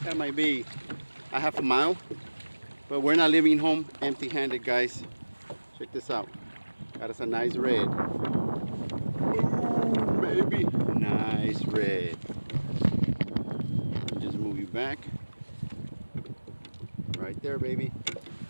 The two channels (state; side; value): inverted; both; correlation -1.00